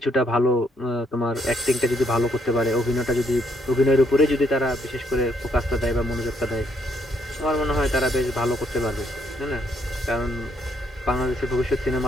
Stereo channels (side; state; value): both; normal; correlation 0.72